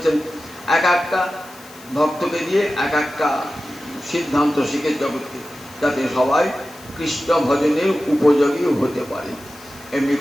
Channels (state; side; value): noise; left; hiss, 21 dB below the sound